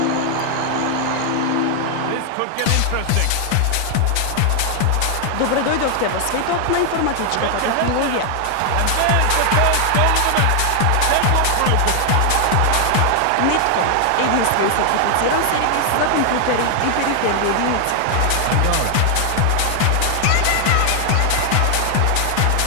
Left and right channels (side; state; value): both; different; correlation 0.00